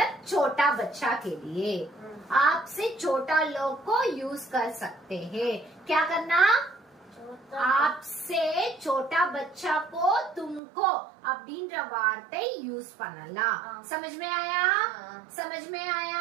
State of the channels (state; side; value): drops out; left; at 10.6 s